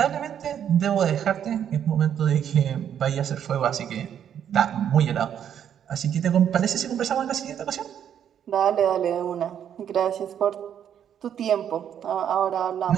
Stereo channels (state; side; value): quieter; left; 9.2 dB